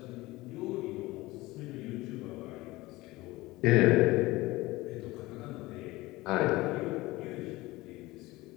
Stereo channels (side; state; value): right; quieter; 19.9 dB